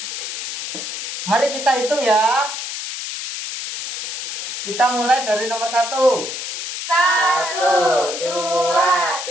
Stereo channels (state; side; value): noise; left; hiss, 5 dB below the sound